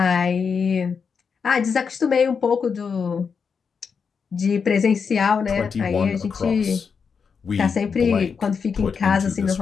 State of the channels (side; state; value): right; quieter; 5.9 dB